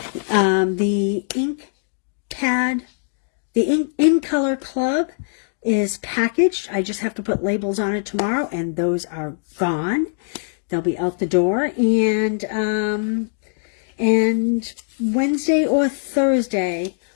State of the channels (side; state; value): right; silent; digital silence